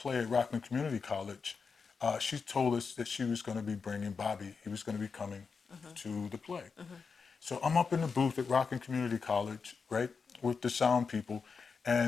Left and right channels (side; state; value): right; quieter; 5.3 dB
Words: at Rockland Community College, she told us that she was going to be bringing Bobby. He was going to be coming to the play. So I'm up in the booth at Rockland Community College, right, with the sound people,